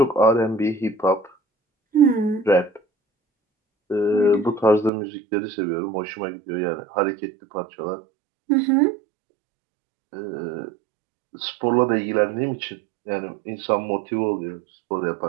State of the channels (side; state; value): left; drops out; at 4.9 s